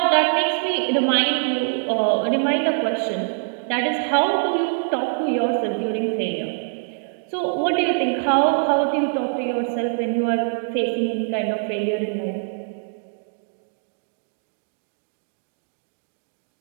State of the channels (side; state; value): left; silent; digital silence